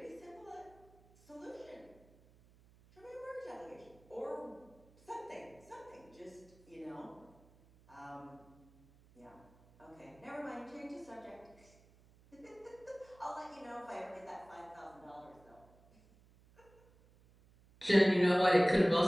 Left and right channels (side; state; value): right; noise; hum, 27 dB below the sound